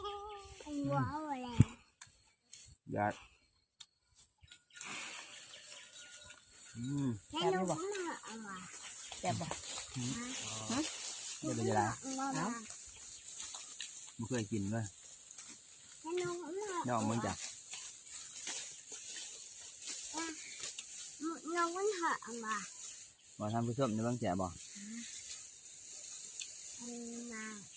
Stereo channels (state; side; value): identical; both; correlation 1.00